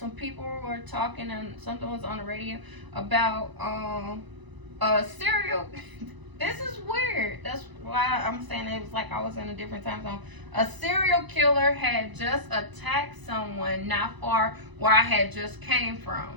people were talking, and something was on the radio about a serial. This is weird. That's why I'm saying it was like I was in a different time zone. A serial killer had just attacked someone not far where I had just came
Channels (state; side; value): late; left; 1.0 ms